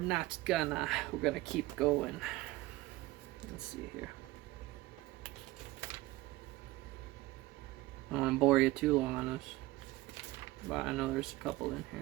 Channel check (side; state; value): left; quieter; 18.6 dB